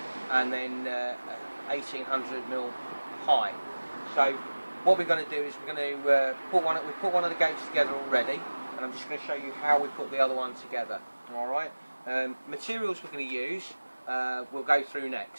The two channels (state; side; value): inverted; both; correlation -1.00